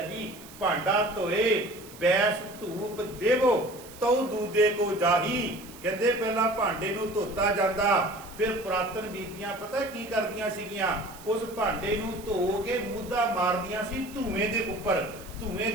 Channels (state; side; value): noise; right; hiss, 19 dB below the sound